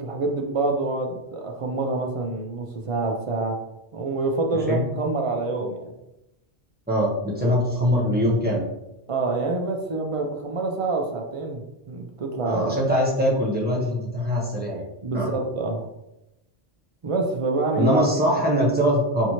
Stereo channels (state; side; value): normal; both; correlation 0.17